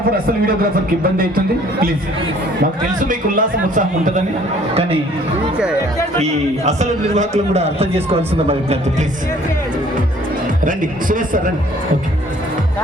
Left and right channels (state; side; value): normal; both; correlation 0.56